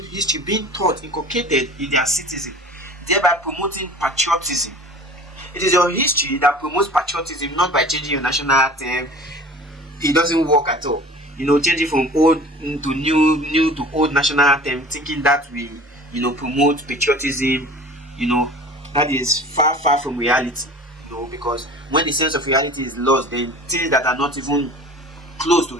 history being taught, inculcated in their citizens, thereby promoting patriotism. It is your history that promotes patriotism, not by changing your national anthem. It doesn't work at all. Changing from old to new to old national anthem, thinking that will, promote patriotism, that is far from reality. Because when the sense of reality is lost, then things that are not even close to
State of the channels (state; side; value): normal; both; correlation 0.43